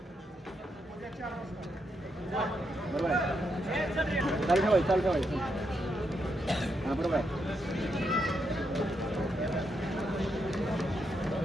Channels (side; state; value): both; normal; correlation 0.81